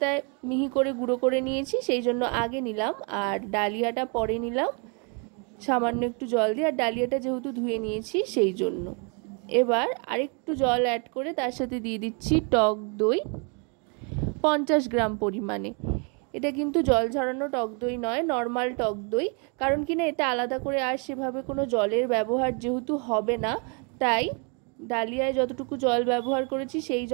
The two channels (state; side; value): quieter; left; 35.8 dB